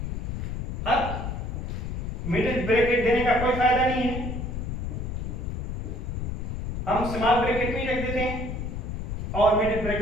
अब middle bracket देने का कोई फायदा नहीं है, हम स्मॉल ब्रैकेट में ही रख देते हैं और मिडिल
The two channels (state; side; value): noise; left; rumble, 4 dB below the sound